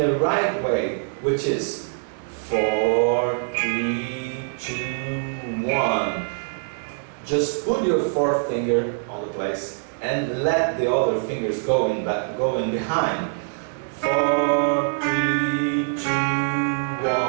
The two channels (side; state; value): left; silent; 63 dB below the other